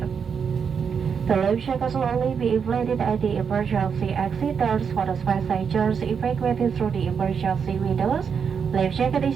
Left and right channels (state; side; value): quieter; left; 6.6 dB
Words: The life jacket will only be inflated at the emergency exit doors for the passengers evacuated through the emergency windows. Life jacket